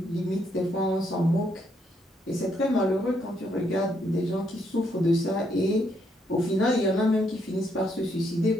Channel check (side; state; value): both; normal; correlation 0.74